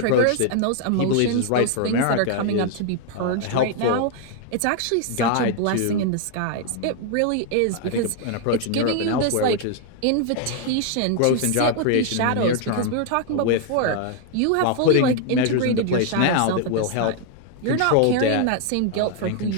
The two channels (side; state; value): both; different; correlation 0.00